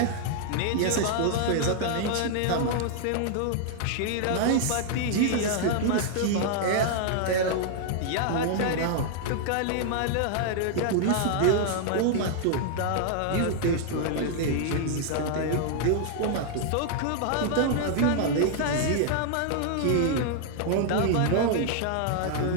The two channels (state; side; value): different; both; correlation -0.01